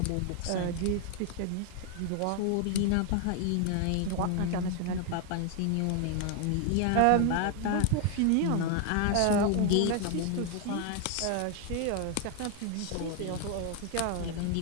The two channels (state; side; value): different; both; correlation 0.00